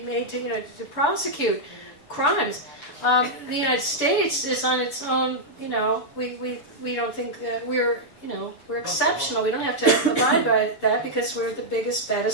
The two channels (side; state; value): right; late; 6.7 ms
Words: to prosecute crimes. The United States is on its own. We don't think that we're exceptional. We don't have to abide by that because we're the biggest,